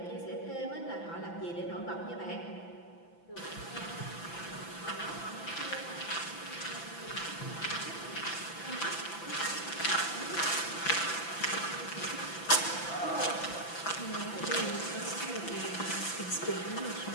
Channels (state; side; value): late; right; 6.0 ms